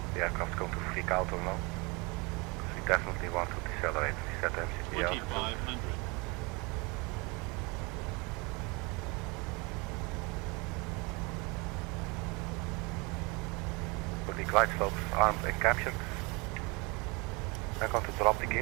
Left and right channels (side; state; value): left; quieter; 27.9 dB